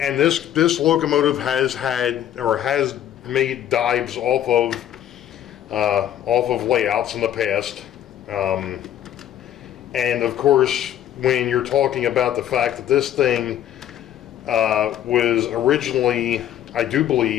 this locomotive has made dives off of layouts in the past. And of course, when you're talking about the fact that this thing was originally, I do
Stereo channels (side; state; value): right; quieter; 11.1 dB